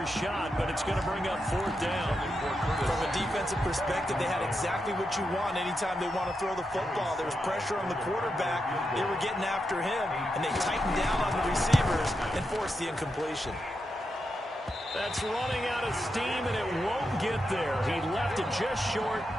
shot, but it's going to bring up 4th down. From a defensive perspective, they had exactly what you want anytime they want to throw the football. There was pressure on the quarterback. They were getting after him, and they tightened down on the receivers and forced the incompletion. That's running out of steam, and it won't get there. He left it just short.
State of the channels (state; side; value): normal; both; correlation 0.86